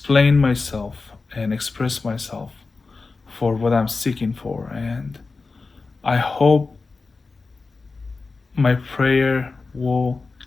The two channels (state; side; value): quieter; right; 4.1 dB